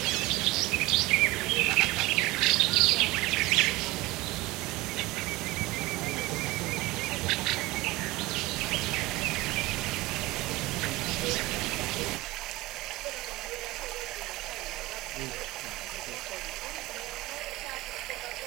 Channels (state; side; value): quieter; left; 20.1 dB